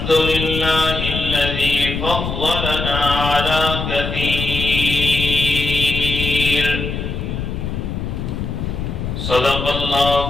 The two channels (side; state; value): left; noise; rumble, 4 dB below the sound